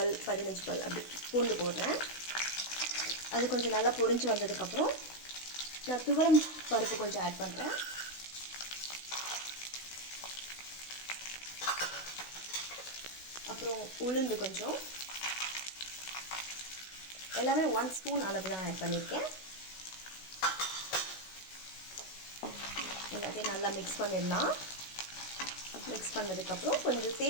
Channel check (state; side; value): late; right; 16 ms